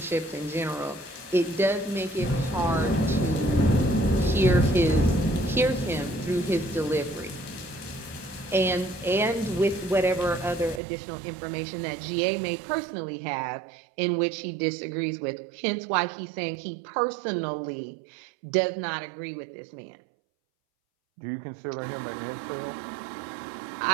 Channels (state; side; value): drops out; left; at 10.8 s